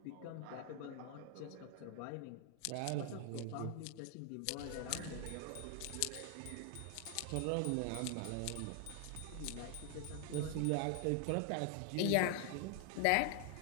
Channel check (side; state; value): both; different; correlation 0.00